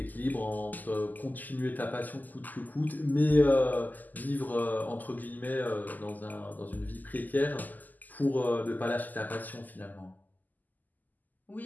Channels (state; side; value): late; right; 0.083 ms